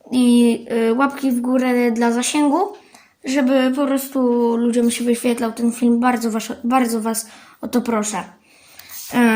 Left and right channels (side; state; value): both; identical; correlation 1.00